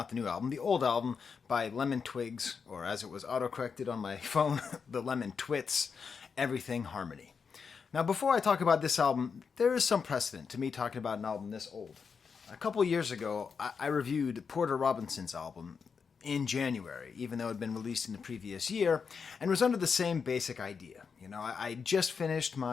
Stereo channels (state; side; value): quieter; right; 5.8 dB